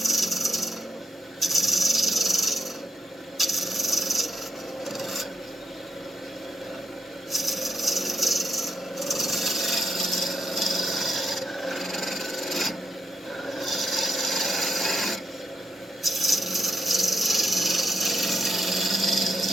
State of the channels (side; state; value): both; normal; correlation 0.79